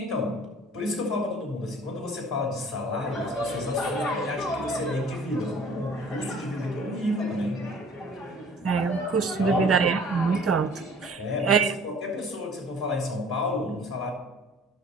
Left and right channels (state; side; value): normal; both; correlation 0.50